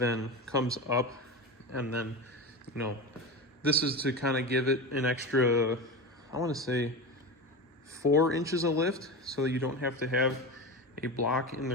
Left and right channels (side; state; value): both; normal; correlation 0.23